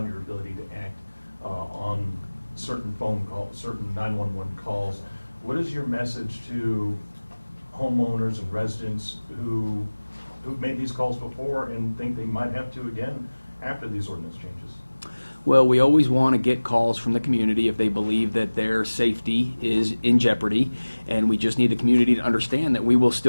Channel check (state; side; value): inverted; both; correlation -1.00